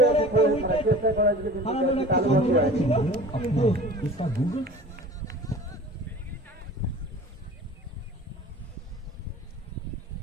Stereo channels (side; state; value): both; normal; correlation 0.41